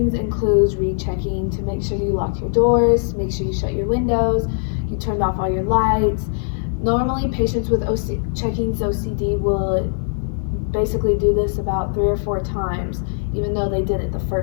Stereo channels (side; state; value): right; silent; digital silence